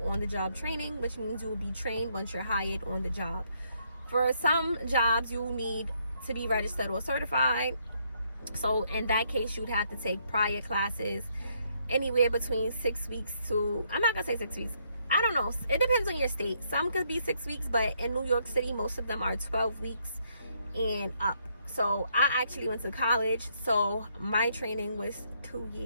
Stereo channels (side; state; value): both; inverted; correlation -0.73